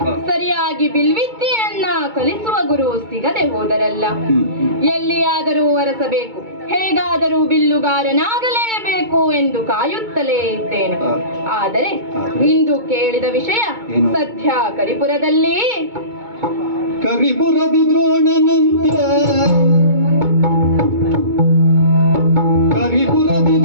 ಸರಿಯಾಗಿ ಬಿಲ್ವಿದ್ಯೆಯನ್ನ ಕಲಿಸುವ ಗುರು ಸಿಗದೆ ಹೋದರಲ್ಲ. ಎಲ್ಲಿಯಾದರೂ ಅರಸಬೇಕು, ಹೇಗಾದರೂ ಬಿಲ್ಲುಗಾರನಾಗಲೇಬೇಕು ಎಂದು ಕಾಯುತ್ತಲೇ ಇದ್ದೇನೆ. ಆದರೆ ಇಂದು ಕೇಳಿದ ವಿಷಯ ಸದ್ಯ ಕರಿಪುರದಲ್ಲಿ ಕರಿಪುರದಿ ದ್ರೋಣನಂತೆ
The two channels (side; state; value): left; late; 2.2 ms